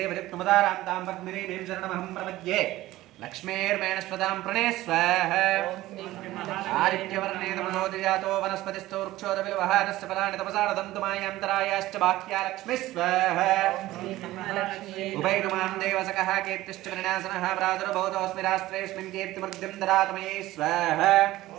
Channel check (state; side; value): quieter; left; 16.5 dB